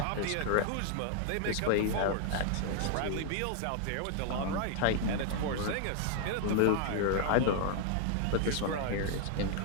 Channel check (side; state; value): both; different; correlation 0.00